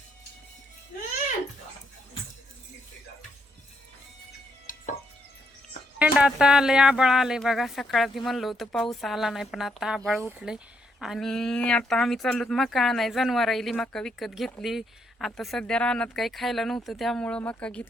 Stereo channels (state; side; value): normal; both; correlation 0.76